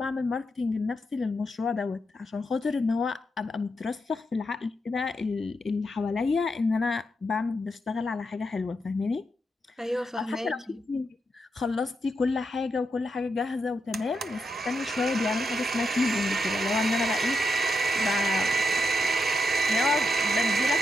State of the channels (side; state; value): both; normal; correlation 0.84